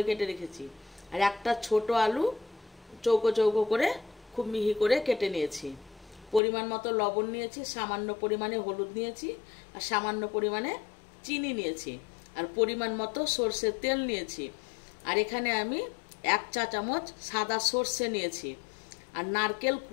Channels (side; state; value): right; drops out; at 6.4 s